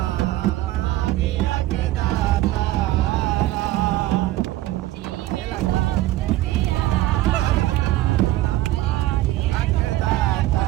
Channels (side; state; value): left; quieter; 15.9 dB